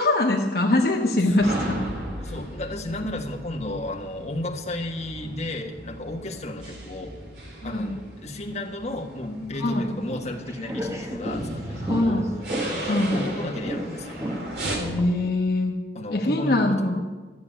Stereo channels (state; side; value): normal; both; correlation 0.63